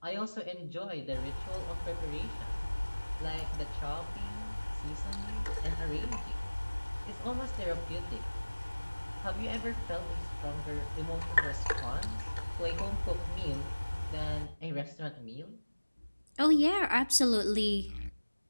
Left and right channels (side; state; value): both; inverted; correlation -1.00